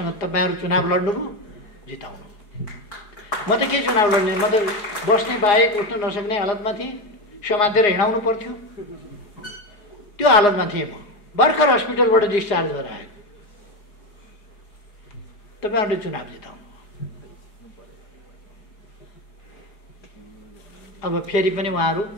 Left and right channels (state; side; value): late; right; 4.8 ms